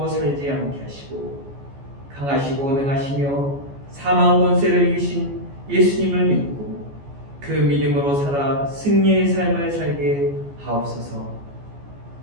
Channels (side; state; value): left; late; 14 ms